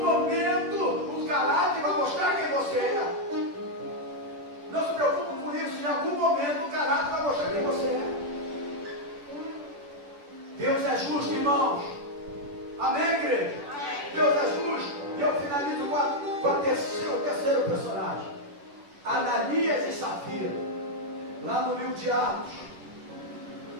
momento, o caráter vai mostrar quem você é. Não se preocupe com isso, em algum momento o caráter vai mostrar quem você é. Deus é justo, irmãos. Amém, igreja? Deus é justo. E eu finalizo com o terceiro personagem. de Atos.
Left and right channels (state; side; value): late; left; 10 ms